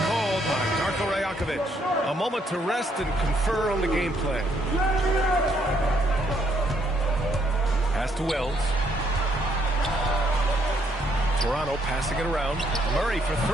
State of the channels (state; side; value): normal; both; correlation 0.71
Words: called by Darko Rajakovic. A moment to rest and confer on the game plan. Pass to Wells. Toronto passing it around. Murray for